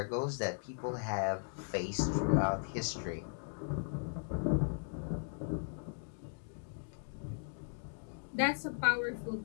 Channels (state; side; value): silent; right; digital silence